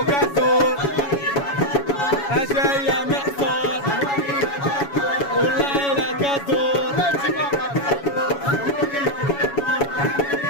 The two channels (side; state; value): right; late; 7.1 ms